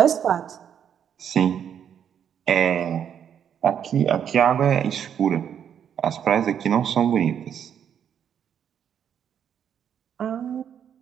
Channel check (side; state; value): left; quieter; 8.7 dB